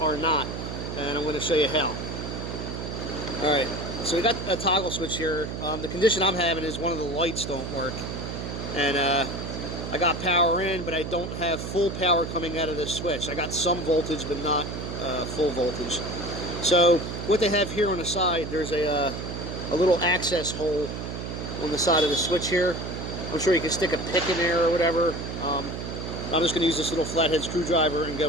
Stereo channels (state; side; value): noise; right; hum, 6 dB below the sound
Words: not, and I'm going to show you how. Alright, so we got a toggle switch here. The condition I'm having is one of the lights don't work, and I got power in, but I don't have full power coming out of this switch. I got some voltage, but not full voltage. So what they have here on the side, there's a little access hole on the side of the switch here. I'm sure you can stick a pick in there or whatever. I'm just going to use this little flathead screwdriver and